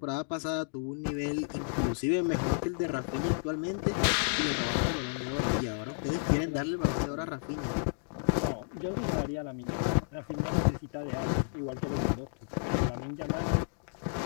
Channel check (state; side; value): silent; right; digital silence